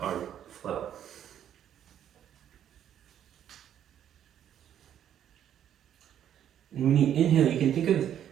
our flow. And when you inhale, you can think of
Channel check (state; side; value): quieter; left; 10.1 dB